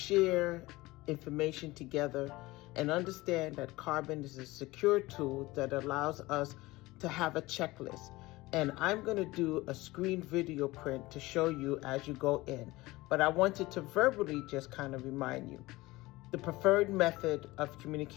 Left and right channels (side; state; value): right; quieter; 20.1 dB